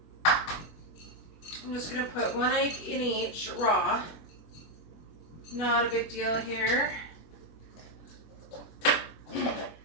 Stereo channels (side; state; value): right; late; 24 ms